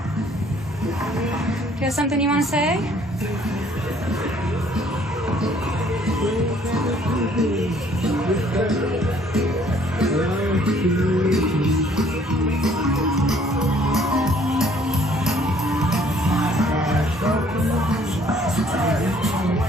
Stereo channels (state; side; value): normal; both; correlation 0.60